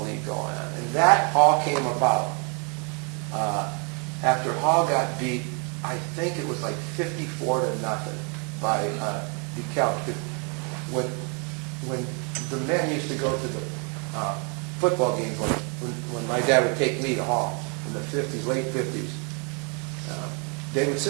league going on, and that all came about after Hall got beat. I think it was like 54-0 by DeKalb. When the men used to go to the football games, like when my dad would take me to Hall in the 50s, late 50s, they would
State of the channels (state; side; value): quieter; left; 35.5 dB